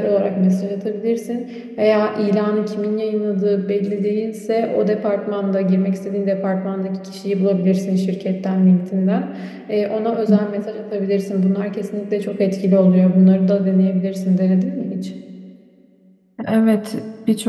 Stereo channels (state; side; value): identical; both; correlation 1.00